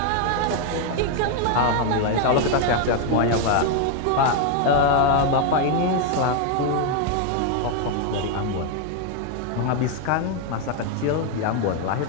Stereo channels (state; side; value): different; both; correlation 0.01